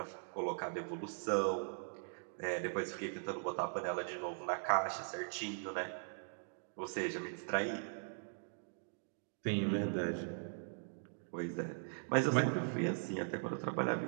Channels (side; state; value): left; silent; digital silence